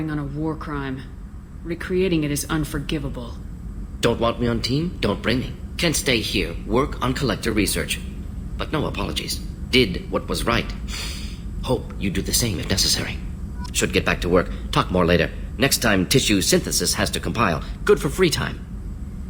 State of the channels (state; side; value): identical; both; correlation 1.00